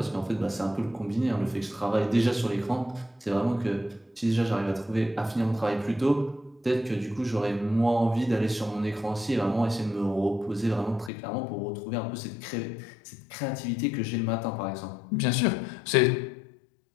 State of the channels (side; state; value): right; drops out; at 11.1 s